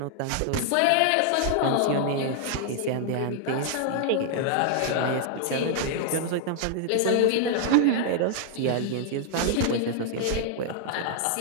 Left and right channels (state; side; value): different; both; correlation 0.00